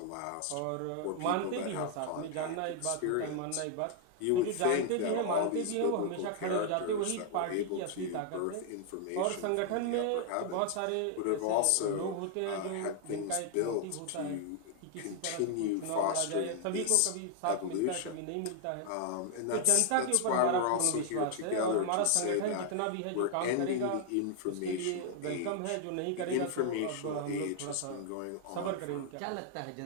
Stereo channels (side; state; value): both; different; correlation 0.00